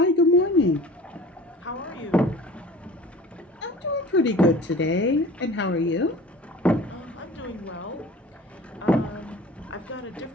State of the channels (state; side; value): normal; both; correlation 0.43